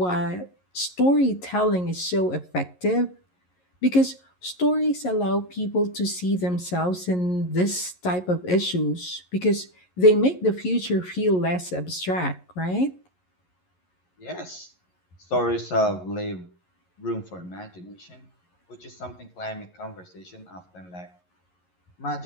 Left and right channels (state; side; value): late; right; 11 ms